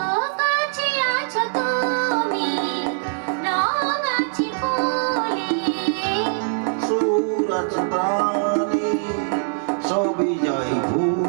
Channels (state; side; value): silent; left; digital silence